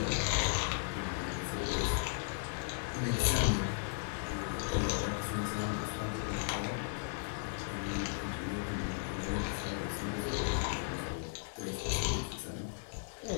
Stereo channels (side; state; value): right; silent; digital silence